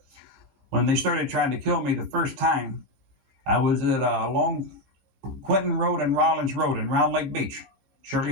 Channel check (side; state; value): left; late; 14 ms